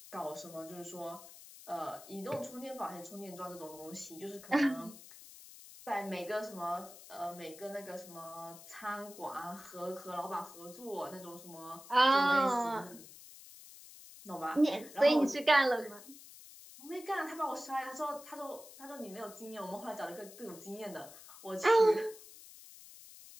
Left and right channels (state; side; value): noise; left; hiss, 17 dB below the sound